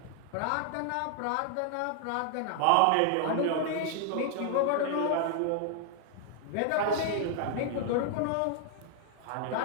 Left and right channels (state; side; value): different; both; correlation 0.00